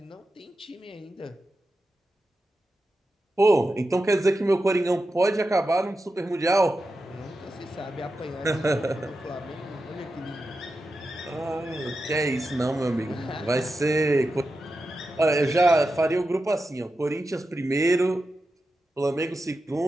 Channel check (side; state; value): both; normal; correlation 0.90